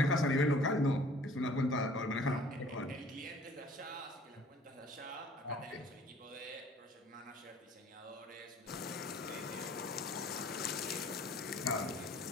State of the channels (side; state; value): both; normal; correlation 0.53